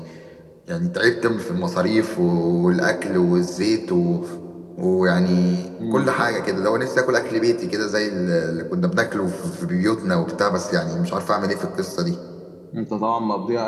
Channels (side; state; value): both; identical; correlation 1.00